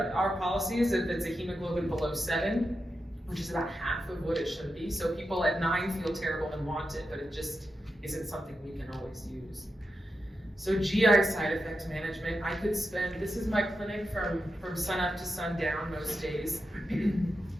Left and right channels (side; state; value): both; normal; correlation 0.88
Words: policy is if it's a hemoglobin below 7, which is about half of what it should be. So people at 9 feel terrible and want it, but it just isn't something we can always use. So GI side effect management, I could spend, this is my clinic from sun up to sundown most days. And